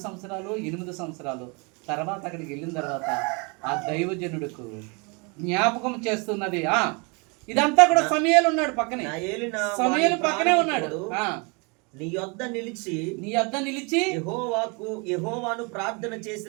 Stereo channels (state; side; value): quieter; left; 31.5 dB